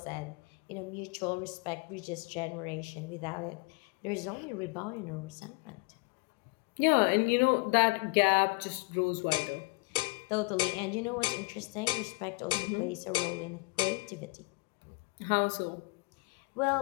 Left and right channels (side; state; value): right; quieter; 27.3 dB